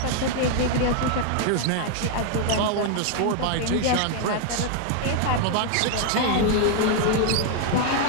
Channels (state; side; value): different; both; correlation 0.00